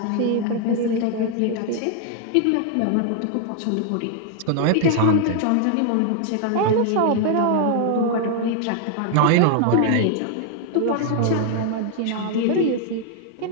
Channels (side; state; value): both; different; correlation 0.00